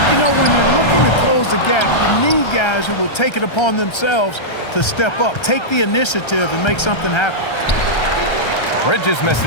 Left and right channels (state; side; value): late; right; 1.3 ms